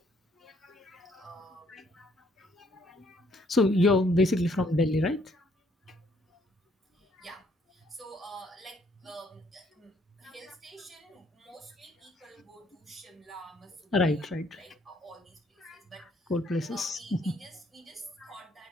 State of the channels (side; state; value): both; normal; correlation 0.67